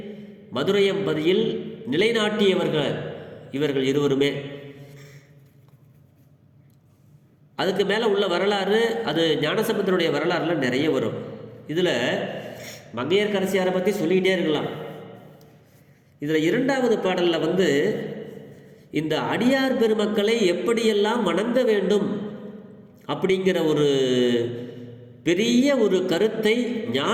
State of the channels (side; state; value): both; identical; correlation 1.00